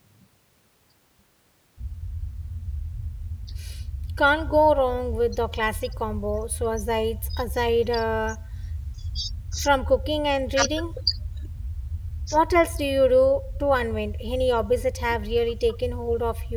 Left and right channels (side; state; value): both; identical; correlation 1.00